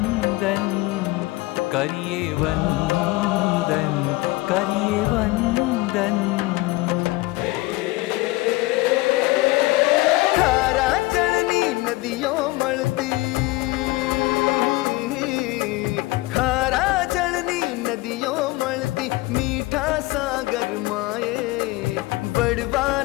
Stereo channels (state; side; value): quieter; right; 20.4 dB